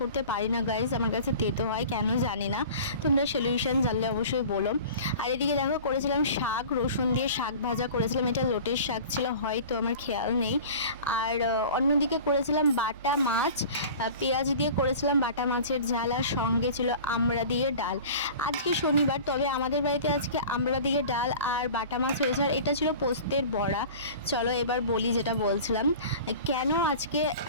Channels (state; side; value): inverted; both; correlation -0.40